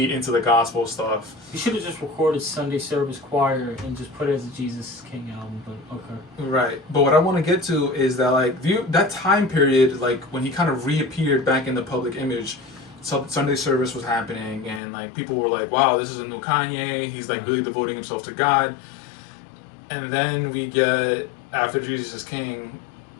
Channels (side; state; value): right; drops out; at 14.8 s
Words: into the gospel stuff. He should have just recorded Sunday service choir and just put it as a Jesus is King album, but okay. Right. But what I want to get to is that, like, that time period, like, when he kind of reappeared back in the public image, Sunday service was happening, and, like, people were like, wow, this is a new Kanye. He's, like, really devoting himself to God. And then we get, after Jesus is King,